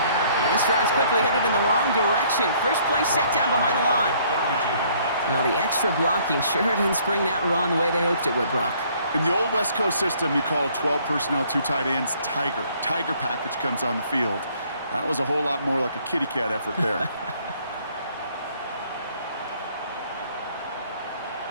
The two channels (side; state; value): both; inverted; correlation -0.61